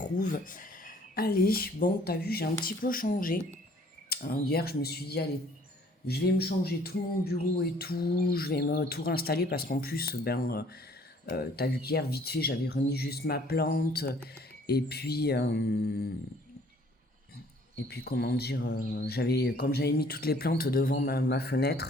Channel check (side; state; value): both; normal; correlation 0.57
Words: Allez, bon, t'as vu, j'ai un petit peu changé. Hier, je me suis dit, allez, je vais me changer tout mon bureau et tout, je vais me tout réinstaller parce qu'en plus, t'as vu qu'hier, vite fait, j'avais remis juste ma plante. Et puis, comment dire, comme j'avais mis toutes les plantes devant ma